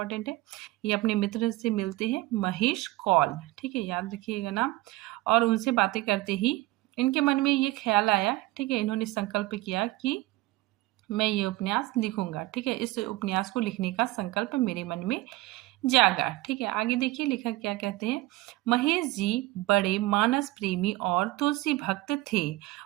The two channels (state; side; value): quieter; left; 19.0 dB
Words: है। ये अपने मित्र से मिलते हैं, महेश कौल। ठीक है, याद रखिएगा नाम। और उनसे बातें करते ही इनके मन में ये ख्याल आया। ठीक है, इन्होंने संकल्प किया कि मैं ये उपन्यास लिखूंगा। ठीक है, इस उपन्यास को लिखने का संकल्प मेरे मन में जागा। ठीक है, आगे देखिए लेखक क्या कहते हैं। महेश जी बड़े मानस प्रेमी और तुलसी भक्त थे।